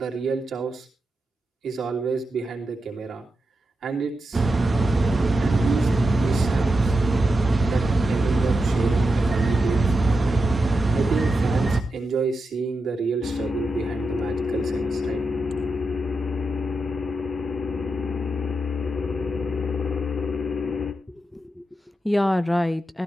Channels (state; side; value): normal; both; correlation 0.88